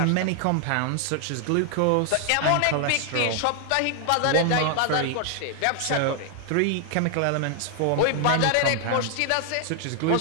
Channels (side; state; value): both; different; correlation 0.00